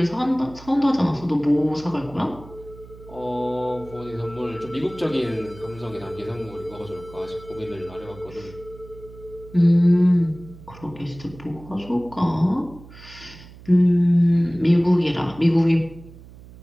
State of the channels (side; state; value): right; noise; hum, 19 dB below the sound